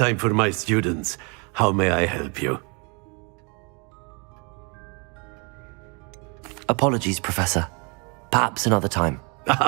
for my students. How may I help you? Apologies, Professor. Perhaps another time.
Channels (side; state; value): left; quieter; 32.6 dB